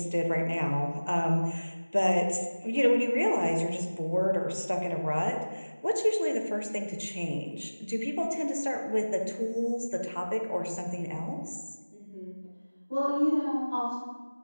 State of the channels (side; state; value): both; inverted; correlation -1.00